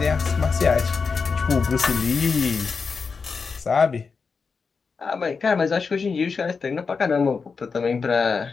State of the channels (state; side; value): quieter; right; 5.1 dB